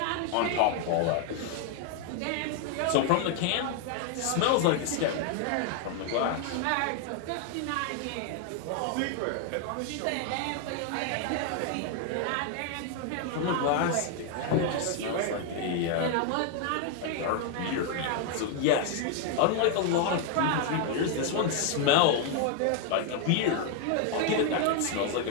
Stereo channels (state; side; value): different; both; correlation 0.00